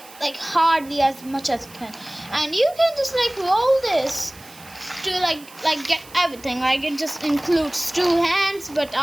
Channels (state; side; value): noise; right; hiss, 21 dB below the sound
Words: hardly as much as you can, and you can just like roll this to like get everything. Like it just includes two hands, but